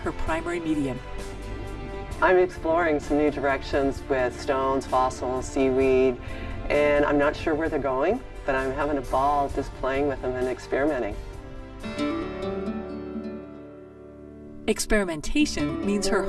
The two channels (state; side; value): identical; both; correlation 1.00